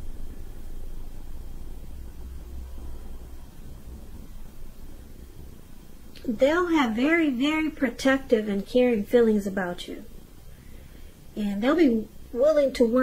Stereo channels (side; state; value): both; identical; correlation 1.00